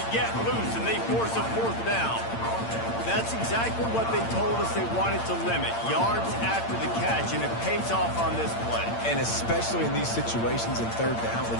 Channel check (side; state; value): right; late; 8.8 ms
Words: get loose, and they force a fourth down. That's exactly what they told us they wanted to limit. Yards after the catch, and it pays off on this play. And especially in these situations in third down